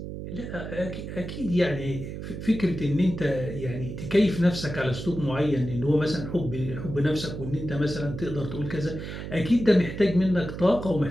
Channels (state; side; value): noise; right; hum, 8 dB below the sound